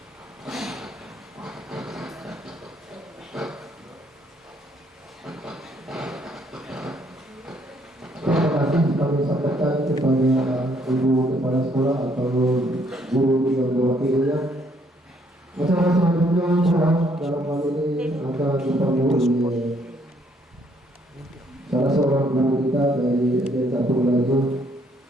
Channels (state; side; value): normal; both; correlation 0.68